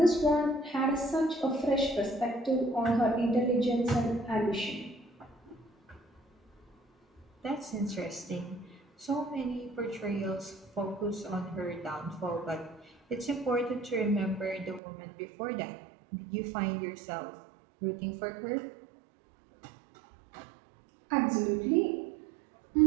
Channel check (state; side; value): drops out; left; at 14.8 s